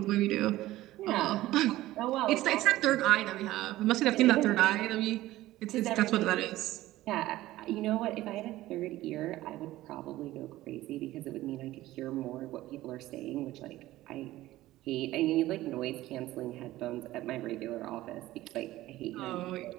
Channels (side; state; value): left; quieter; 16.2 dB